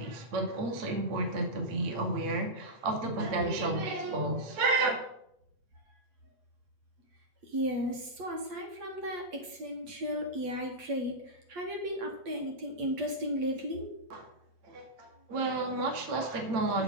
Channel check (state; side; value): late; left; 8.4 ms